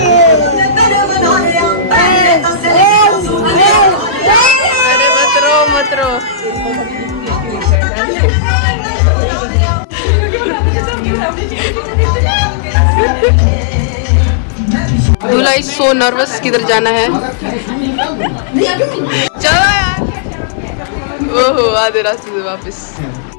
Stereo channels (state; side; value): drops out; right; at 7.8 s